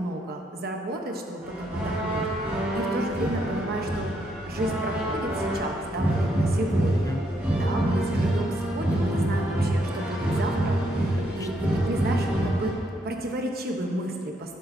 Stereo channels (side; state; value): both; normal; correlation 0.75